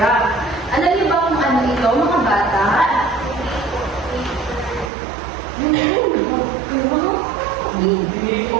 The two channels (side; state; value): left; drops out; at 4.9 s